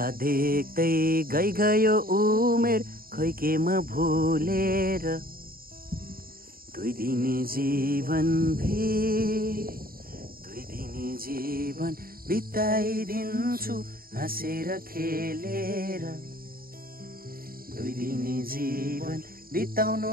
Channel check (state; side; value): late; left; 0.43 ms